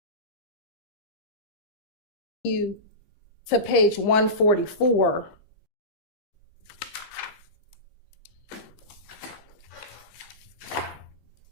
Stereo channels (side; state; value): right; late; 13 ms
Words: to page 144,